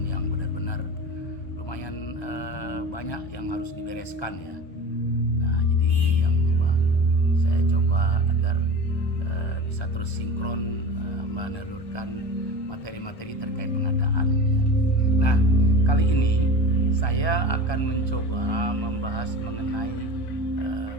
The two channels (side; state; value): right; late; 1.3 ms